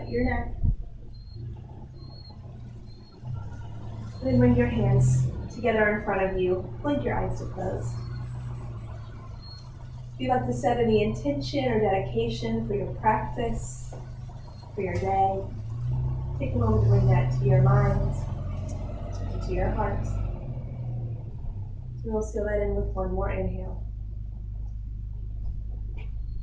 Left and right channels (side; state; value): both; identical; correlation 1.00